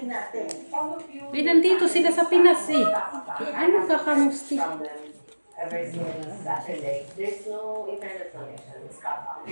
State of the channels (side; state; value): both; inverted; correlation -1.00